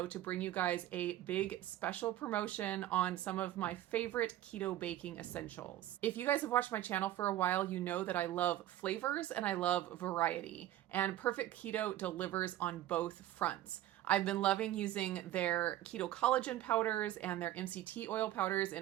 to bring you guys a big special promotion on some of my favorite keto baking essentials. If you guys have watched my channel for a while, you know that I love flavors and I love variety, and Perfect Keto delivers on both fronts. I've been loving using their keto collagen powders and their MCT oil powders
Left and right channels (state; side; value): quieter; left; 13.7 dB